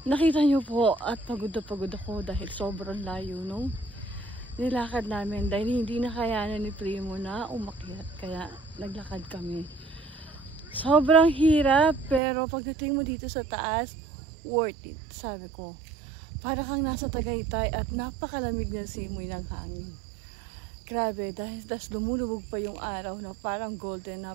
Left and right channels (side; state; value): left; drops out; at 12.2 s